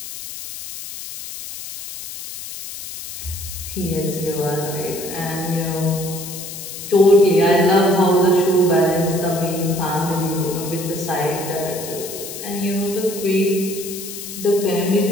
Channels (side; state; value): left; noise; hiss, 10 dB below the sound